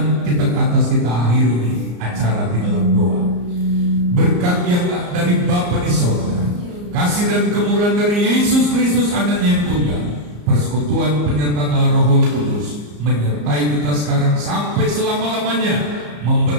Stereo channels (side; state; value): left; late; 34 ms